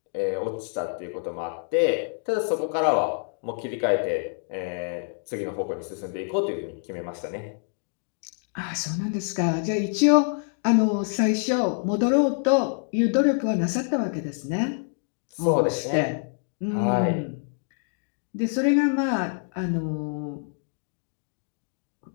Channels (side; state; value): right; silent; 60 dB below the other